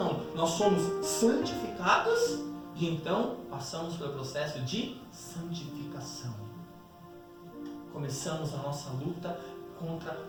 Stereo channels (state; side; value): identical; both; correlation 1.00